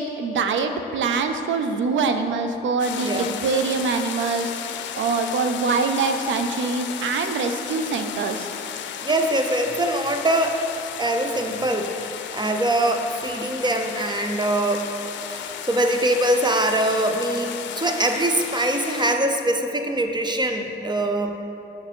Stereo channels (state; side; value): normal; both; correlation 0.27